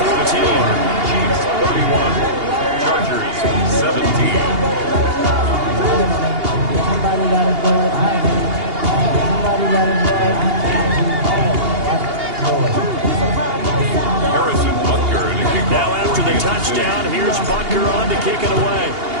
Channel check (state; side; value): late; left; 2.8 ms